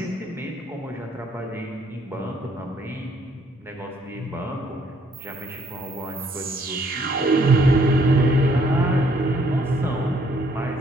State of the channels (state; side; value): normal; both; correlation 0.66